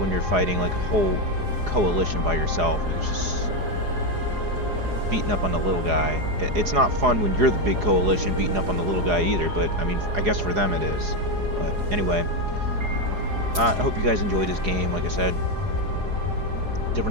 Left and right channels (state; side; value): late; left; 4.8 ms